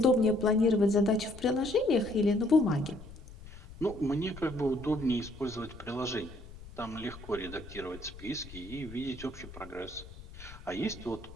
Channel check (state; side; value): noise; left; rumble, 16 dB below the sound